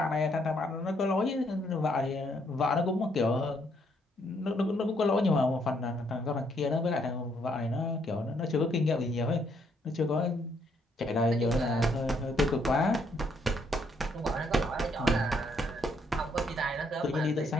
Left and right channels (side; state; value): both; normal; correlation 0.71